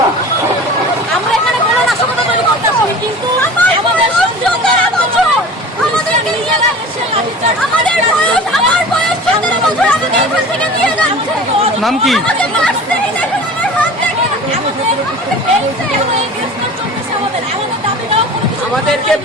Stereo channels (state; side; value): normal; both; correlation 0.39